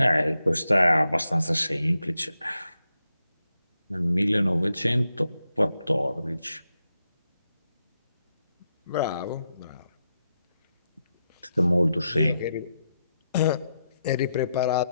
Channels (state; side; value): inverted; both; correlation -0.85